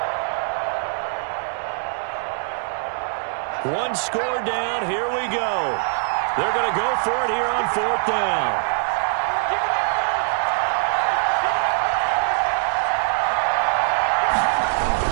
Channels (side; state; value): left; silent; digital silence